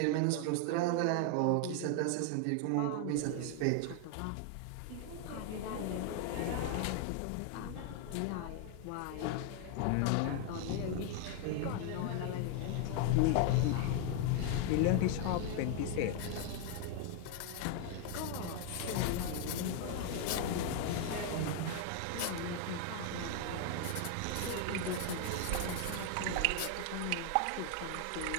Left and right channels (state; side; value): different; both; correlation 0.00